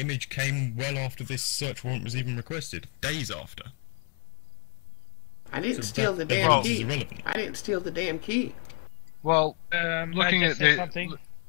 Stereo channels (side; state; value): right; quieter; 38.5 dB